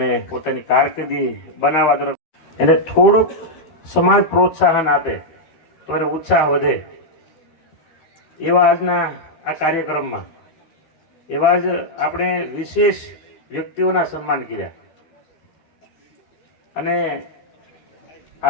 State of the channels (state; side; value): late; right; 13 ms